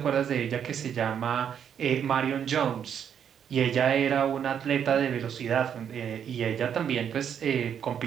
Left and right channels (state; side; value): quieter; left; 8.4 dB